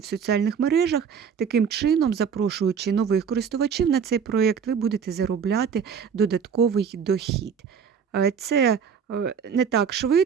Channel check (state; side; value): quieter; left; 6.9 dB